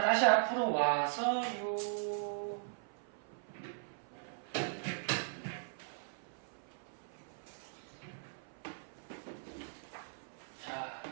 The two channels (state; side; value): silent; left; 52 dB below the other